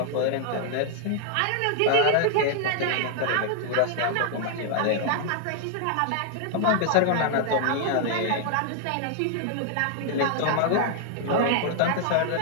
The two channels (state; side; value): different; both; correlation 0.00